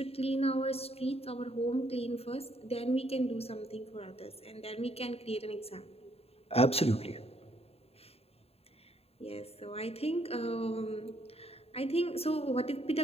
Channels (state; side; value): late; right; 0.29 ms